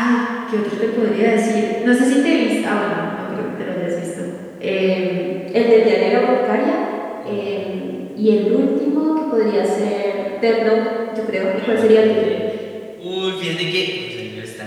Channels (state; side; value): identical; both; correlation 1.00